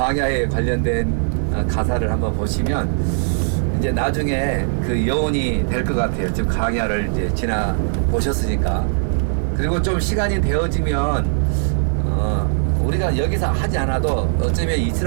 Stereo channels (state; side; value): silent; left; digital silence